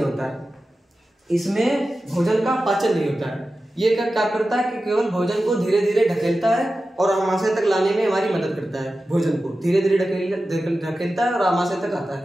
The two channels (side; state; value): both; normal; correlation 0.93